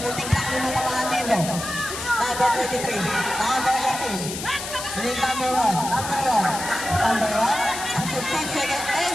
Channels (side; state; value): left; noise; hiss, 7 dB below the sound